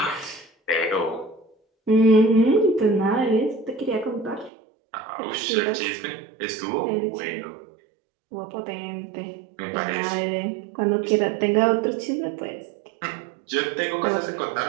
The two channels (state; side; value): drops out; left; at 4.5 s